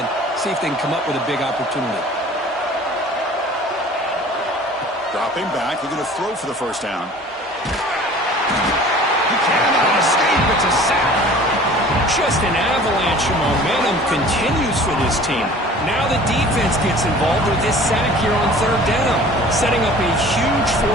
and see if they can come up with a big opportunity. Dropping back, looking to throw for the first down. He cannot escape. It's a sack. Just an avalanche of momentum continues for this team. Now the defense gets involved with this sack here on third down, setting up a huge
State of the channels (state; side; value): normal; both; correlation 0.46